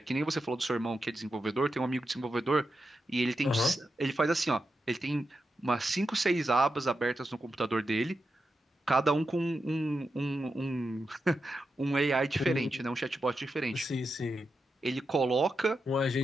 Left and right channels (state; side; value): normal; both; correlation 0.88